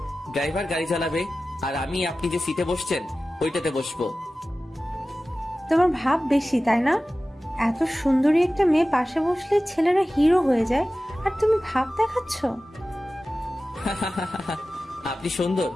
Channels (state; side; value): normal; both; correlation 0.96